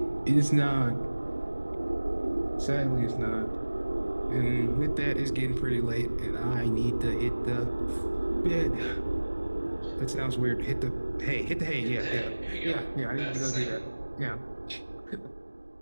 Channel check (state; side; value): inverted; both; correlation -1.00